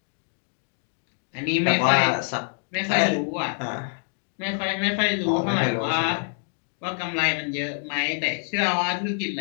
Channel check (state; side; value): silent; right; 61 dB below the other